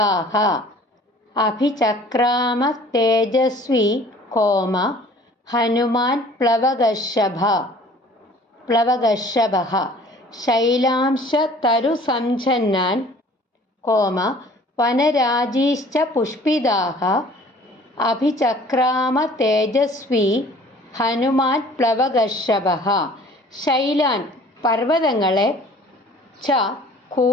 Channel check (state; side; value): normal; both; correlation 0.50